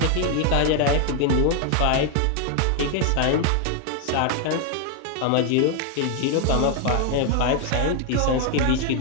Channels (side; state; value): both; different; correlation 0.00